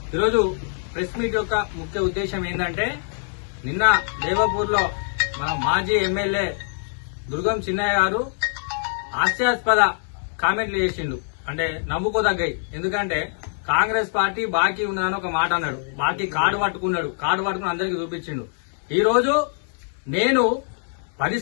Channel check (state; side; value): silent; right; digital silence